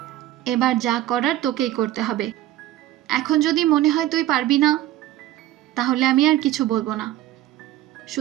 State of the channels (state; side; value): quieter; left; 14.2 dB